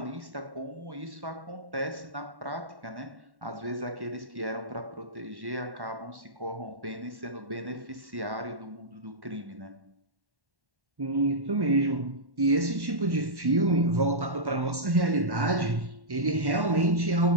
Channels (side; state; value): left; late; 1.1 ms